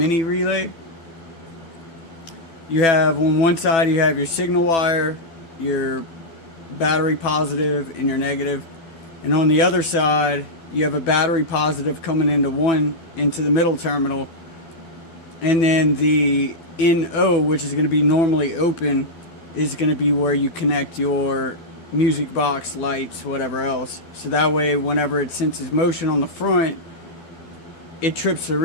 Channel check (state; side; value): late; right; 12 ms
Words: relay. You have on one side you have your signal wire, your battery positive and your negative, and on the other side you have a battery positive coming into the middle terminal, and then the NO, which is going to be normally open, is going to be where you connect your music box, lights, whatever else. So that way whenever it senses motion on the front, it trips the